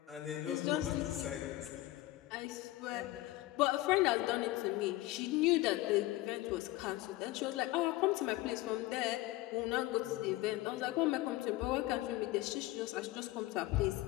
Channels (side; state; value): right; quieter; 17.4 dB